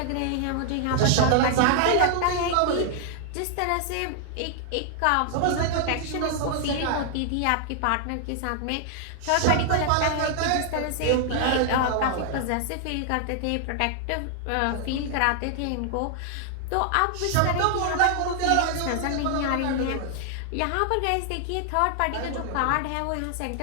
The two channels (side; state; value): both; different; correlation 0.00